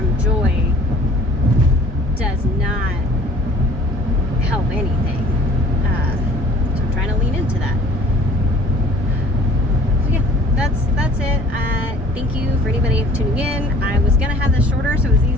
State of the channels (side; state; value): both; normal; correlation 0.51